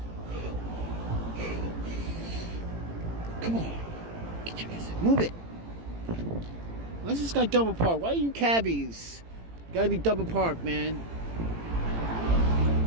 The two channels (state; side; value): late; left; 18 ms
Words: Come on. Get your ass. Move it. Why's this guy double parked? Why are you cabbies? Gotta be double parked, man.